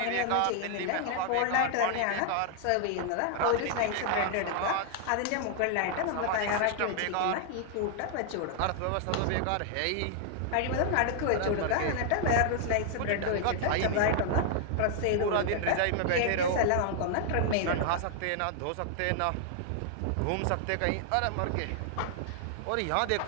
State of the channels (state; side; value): different; both; correlation 0.00